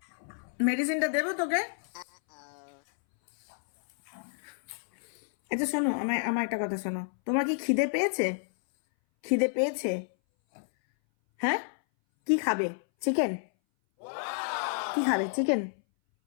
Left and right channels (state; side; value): silent; right; 58 dB below the other